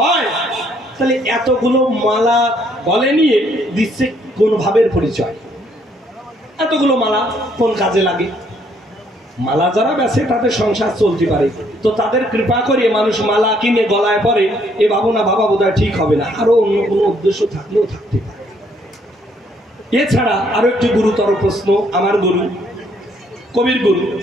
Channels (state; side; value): normal; both; correlation 0.68